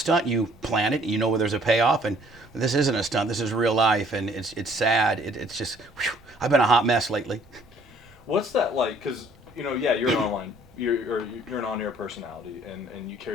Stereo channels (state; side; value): normal; both; correlation 0.59